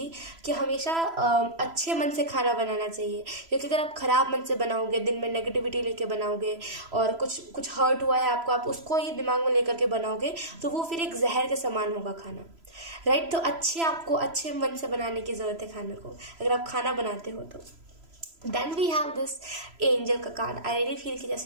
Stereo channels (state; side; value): late; left; 3.0 ms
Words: कि हमेशा अच्छे मन से खाना बनाना चाहिए, क्योंकि अगर आप ख़राब मन से बनाओगे, दिन में नेगेटिविटी लेके बनाओगे और कुछ हर्ट हुआ है आपको, आप उसको ही दिमाग में लेकर के बनाओगे, तो वो फिर एक जहर के समान होगा खाना. राइट. तो आपको अच्छे मन से बनाने की ज़रूरत है खाने को, अगर आप खाना बनाते हो तो. Then we have this angel का कार्ड. आई रियली फील कि